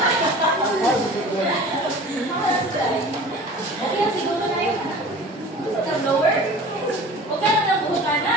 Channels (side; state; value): both; normal; correlation 0.41